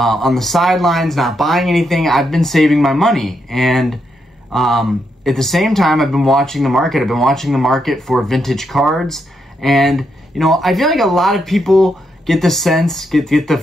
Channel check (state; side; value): normal; both; correlation 0.80